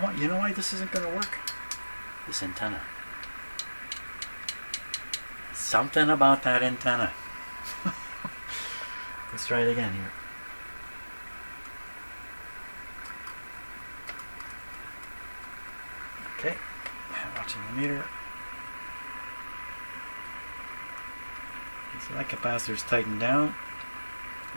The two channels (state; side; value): inverted; both; correlation -1.00